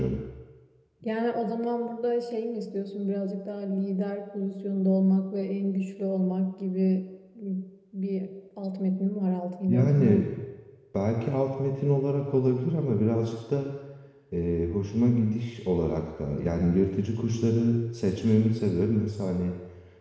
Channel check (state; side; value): identical; both; correlation 1.00